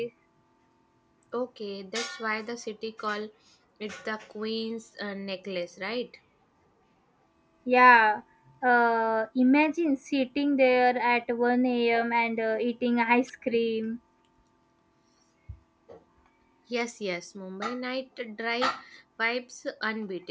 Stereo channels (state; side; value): identical; both; correlation 1.00